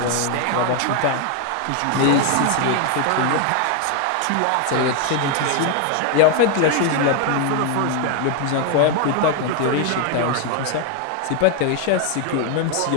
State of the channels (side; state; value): both; different; correlation 0.01